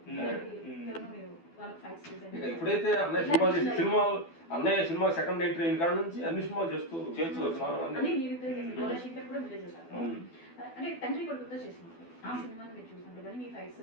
ఎప్పుడైతే అన్నయ్య సినిమా సెకండ్ ఎంట్రీ అయిన కాడ నుంచి అన్ని సినిమాలు చేస్తూ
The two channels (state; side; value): late; right; 12 ms